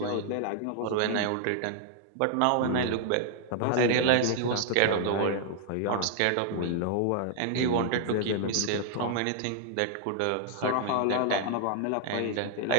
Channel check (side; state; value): both; different; correlation 0.00